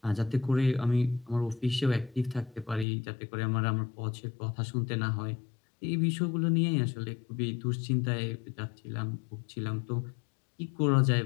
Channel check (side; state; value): right; drops out; at 2.9 s